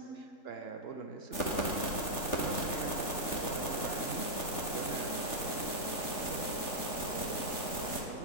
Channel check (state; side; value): late; right; 3.4 ms